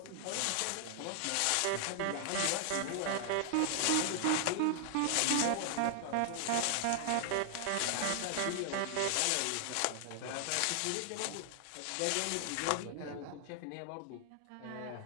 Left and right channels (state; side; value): different; both; correlation 0.00